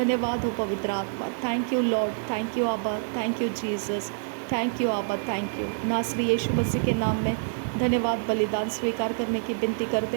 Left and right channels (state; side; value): silent; left; digital silence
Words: हो पवित्र आत्मा। Thank you Lord, thank you आबा, thank you Jesus, thank you आबा, थैंक यू। नासरी यीशु मसीह के नाम में धन्यवाद बलिदान स्वीकार करने की विनती करते